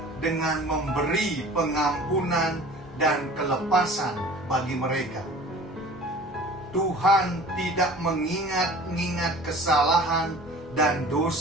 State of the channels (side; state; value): both; normal; correlation 0.44